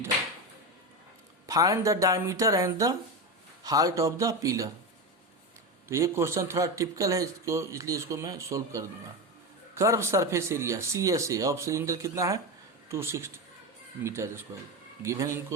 Find the diameter and the height of the pillar. तो ये question थोड़ा टिपिकल है इसको, इसलिए इसको मैं सोल्व कर दूंगा। Curve surface area CSA of cylinder कितना है 260 metre square given in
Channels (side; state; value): both; normal; correlation 0.17